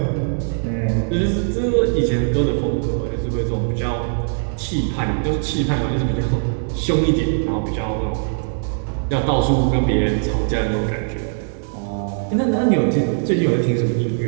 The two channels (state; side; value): silent; left; digital silence